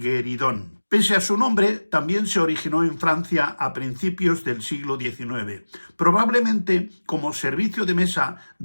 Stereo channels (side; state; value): both; inverted; correlation -1.00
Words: Pese a su nombre, también se originó en Francia a principios del siglo XIX, probablemente como servicio de mesa